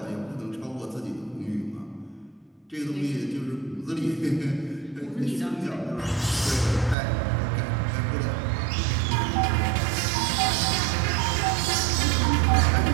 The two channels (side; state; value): left; drops out; at 7.0 s